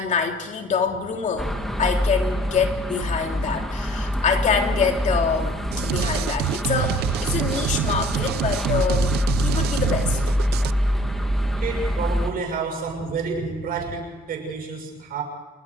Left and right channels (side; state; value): both; normal; correlation 0.53